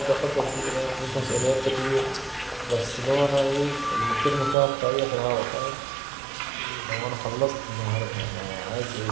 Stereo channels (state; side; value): drops out; left; at 4.5 s